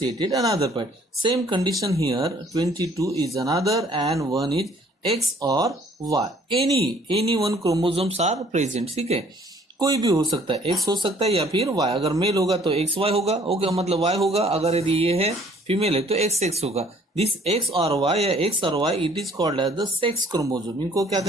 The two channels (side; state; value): both; normal; correlation 0.58